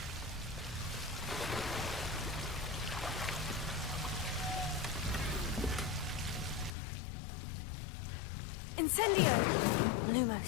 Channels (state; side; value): drops out; right; at 6.8 s